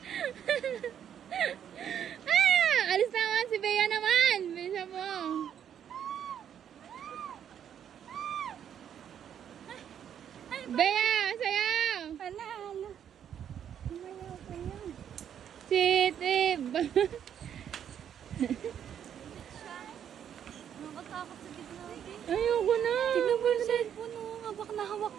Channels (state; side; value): quieter; left; 9.1 dB